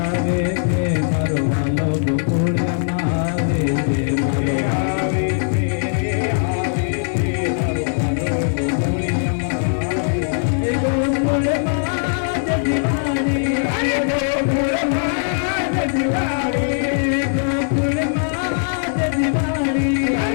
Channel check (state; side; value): silent; right; 66 dB below the other